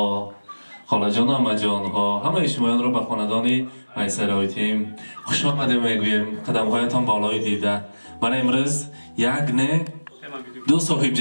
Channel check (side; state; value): both; inverted; correlation -1.00